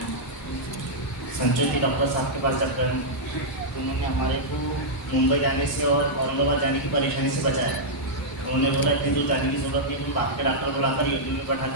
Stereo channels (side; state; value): both; normal; correlation -0.08